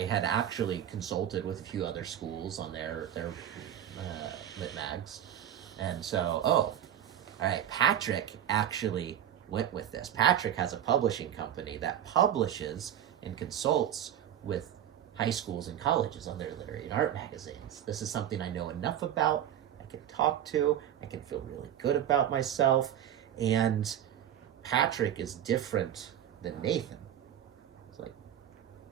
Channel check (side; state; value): left; quieter; 10.4 dB